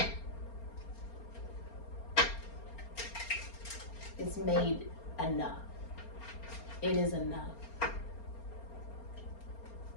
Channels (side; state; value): right; late; 4.3 ms